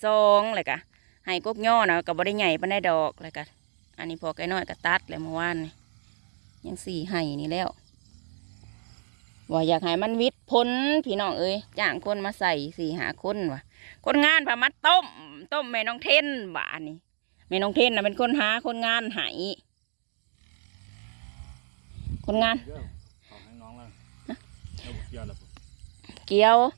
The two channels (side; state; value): left; silent; 57 dB below the other